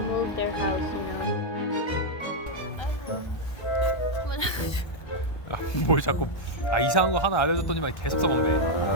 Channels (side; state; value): right; late; 1.2 ms